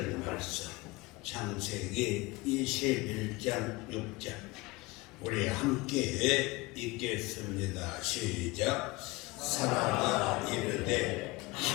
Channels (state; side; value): quieter; right; 22.8 dB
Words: 말씀. 창세기 21장 6절 우리 함께 읽겠습니다. 시작. 사라가 이르되